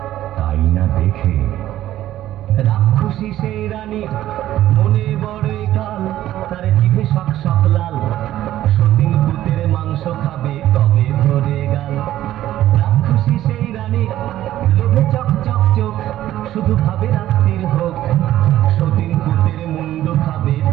তাই না দেখে রাক্ষসী সেই রানী মনে বড়ই কাল, তার জিভে শক শক লাল। সতীন পুতের মাংস খাবে কবে ধরে গাল। রাক্ষসী সেই রানী লোভে চক চক চোখ, শুধু ভাবে রাত্রির হোক। সতীন পুতের মুন্ডু খাবে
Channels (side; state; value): left; quieter; 13.5 dB